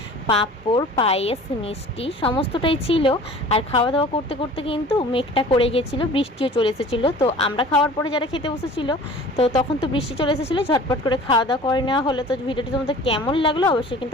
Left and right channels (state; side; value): normal; both; correlation 0.44